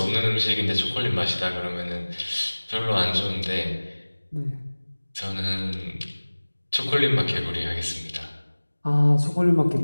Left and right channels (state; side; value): inverted; both; correlation -1.00